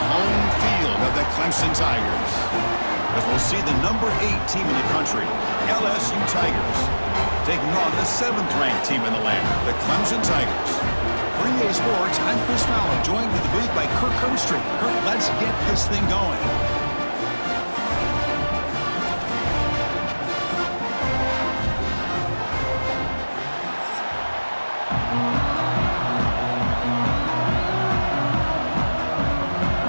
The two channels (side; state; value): both; inverted; correlation -1.00